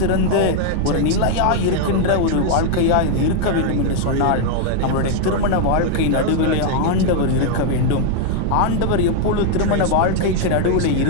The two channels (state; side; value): different; both; correlation 0.00